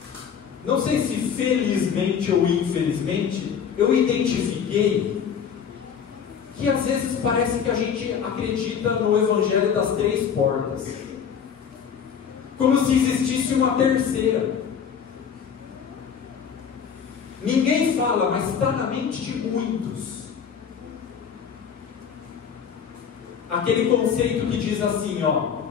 não sei se felizmente ou infelizmente, eu identifiquei que às vezes parece que a gente acredita no evangelho das 3 portas, como se existisse uma terceira. Ninguém fala, mas está na mente de muitos. aquele conceito que diz assim, ó,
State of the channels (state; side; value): quieter; right; 7.4 dB